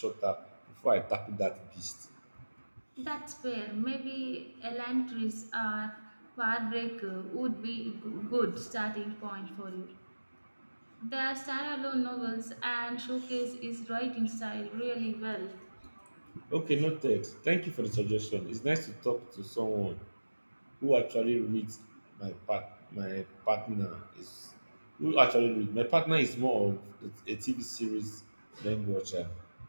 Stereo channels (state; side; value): inverted; both; correlation -1.00